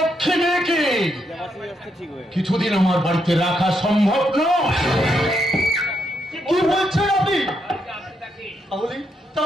মেয়েকে কিছুদিন আমার বাড়িতে রাখা সম্ভব নয়। কি বলছেন আপনি?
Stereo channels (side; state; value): both; normal; correlation 0.79